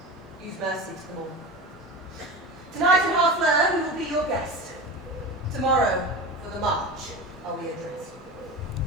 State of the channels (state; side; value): normal; both; correlation 0.29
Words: Use mercy to them all. Tonight in Harfleur we will be your guest. Tomorrow, for the march, are we addressed.